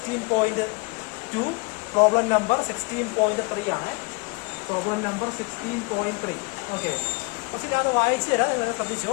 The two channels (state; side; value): quieter; right; 28.6 dB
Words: പ്രോബ്ലം നമ്പർ 16.3 ആണ്. Problem number 16.3. ഓക്കെ, ക്വസ്റ്റ്യൻ ഞാൻ വായിച്ചു തരാം, നിങ്ങൾ ശ്രദ്ധിച്ചോ.